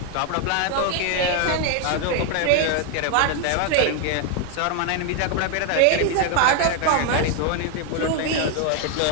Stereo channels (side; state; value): both; different; correlation 0.01